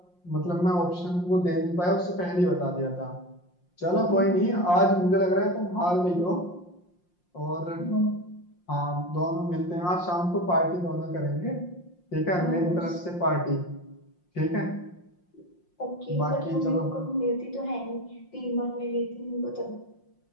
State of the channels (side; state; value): right; late; 5.7 ms